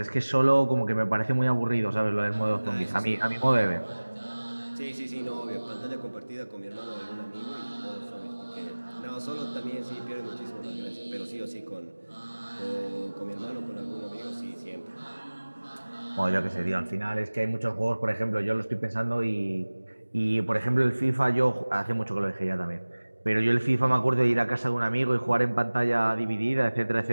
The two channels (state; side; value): inverted; both; correlation -1.00